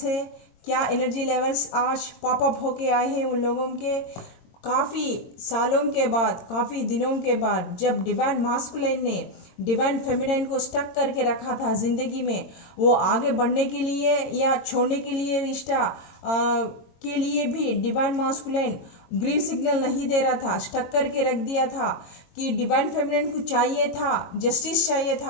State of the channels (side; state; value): right; late; 22 ms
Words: है, क्या एनर्जी लेवल्स आज पॉप अप होके आए हैं उन लोगों के। काफ़ी सालों के बाद, काफ़ी दिनों के बाद जब डिवाइन मास्कुलिन ने डिवाइन फेमिनाइन को स्टक करके रखा था ज़िंदगी में, वो आगे बढ़ने के लिए या छोड़ने के लिए रिश्ता के लिए भी डिवाइन मास्कुलिन ग्रीन सिग्नल नहीं दे रहा था, स्टक करके रख दिया था कि डिवाइन फेमिनिन को चाहिए था, जस्टिस चाहिए